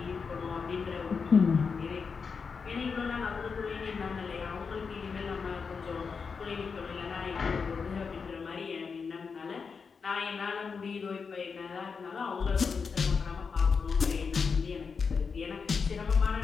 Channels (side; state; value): right; quieter; 5.4 dB